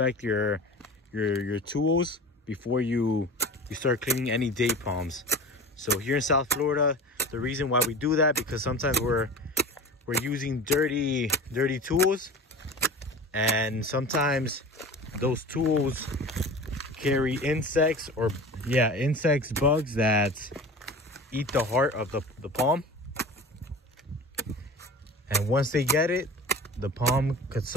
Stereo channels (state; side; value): normal; both; correlation 0.36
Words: your tools before you start cleaning any date palms. So here in South Florida, the reason why we do that, because sometimes we're using dirty tools, and sometimes those tools carry insects, or insects, bugs that eat the heart of the palm. And once they get it, the palm could